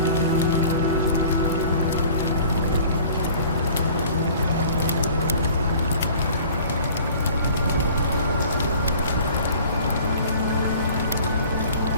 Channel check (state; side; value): inverted; both; correlation -0.48